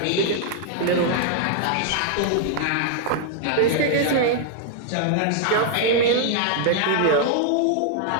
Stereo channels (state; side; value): different; both; correlation 0.00